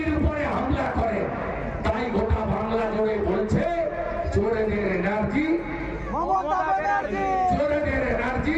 উপরে হামলা করে, তাই গোটা বাংলা জুড়ে বলছে চোরেদের এনার্জি, চোরেদের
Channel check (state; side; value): identical; both; correlation 1.00